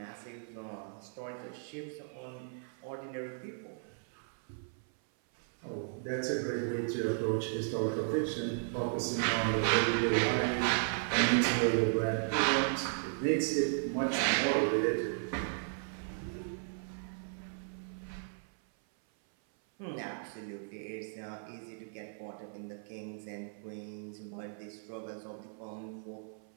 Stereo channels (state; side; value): silent; left; 54 dB below the other